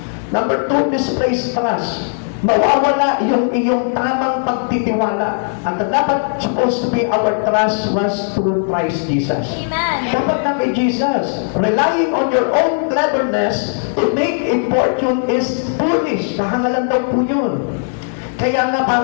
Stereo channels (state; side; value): silent; right; digital silence